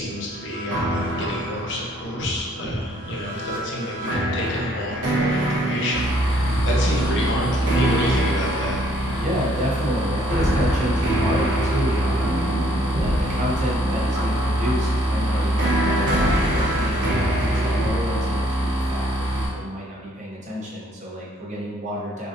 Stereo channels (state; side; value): normal; both; correlation 0.65